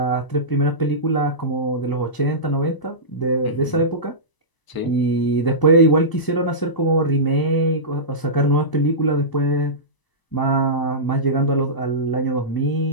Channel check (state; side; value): late; right; 1.0 ms